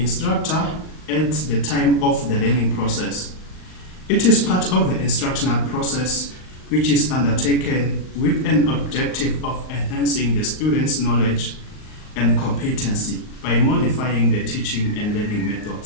at the time of the learning process. It is part of the instructional process which is undertaken with an objective of enhancing the student's knowledge and competency by modifying the teaching and learning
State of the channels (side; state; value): right; late; 38 ms